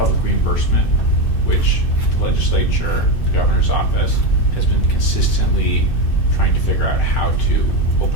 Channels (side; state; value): right; late; 2.6 ms